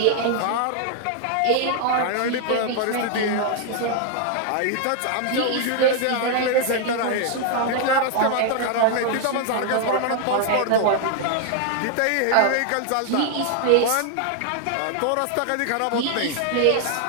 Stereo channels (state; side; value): different; both; correlation 0.00